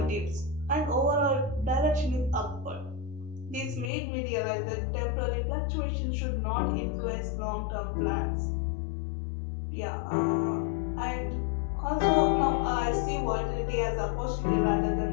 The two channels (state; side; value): drops out; right; at 3.9 s